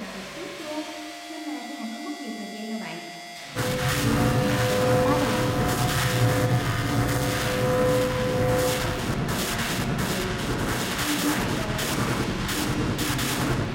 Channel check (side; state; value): both; identical; correlation 1.00